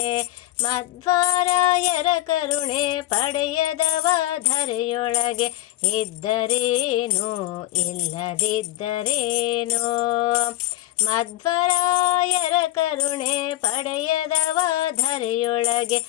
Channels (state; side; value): quieter; right; 16.0 dB